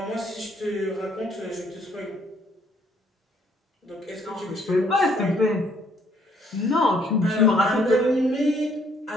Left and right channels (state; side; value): normal; both; correlation 0.66